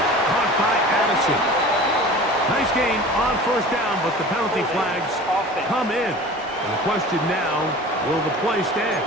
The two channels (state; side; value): normal; both; correlation 0.40